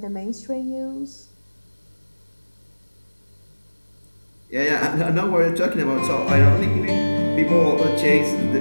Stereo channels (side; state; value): both; inverted; correlation -1.00